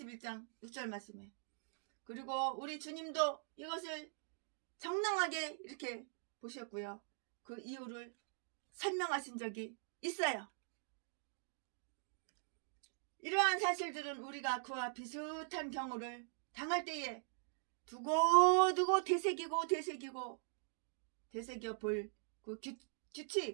6절 말씀에. 그리고 우리 주님도 이것을 정당하게 이렇게 보셨고요. 그 이유를 설명하신 적이 있어요. 이러한 사실들은 우리가 그와 비슷한 경우를 당할 때에 두고두고 되새겨 볼 그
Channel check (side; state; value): left; silent; digital silence